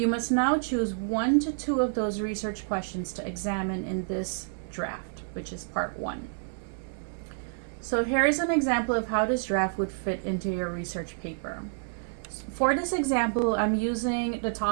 must now choose 1 to 2 of those research questions to examine in this draft, which is part 1. So here is an example of how this draft would fit into your research paper. For this example, I'm using the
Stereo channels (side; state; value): left; silent; 59 dB below the other